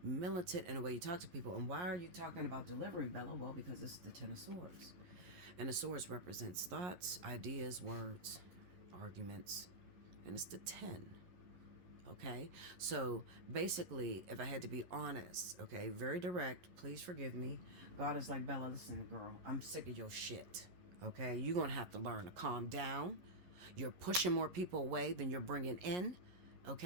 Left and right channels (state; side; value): late; left; 11 ms